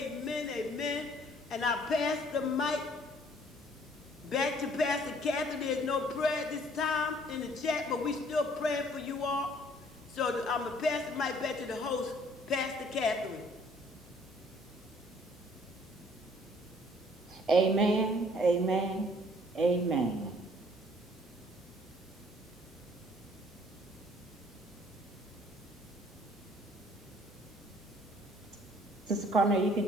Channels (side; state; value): both; normal; correlation 0.58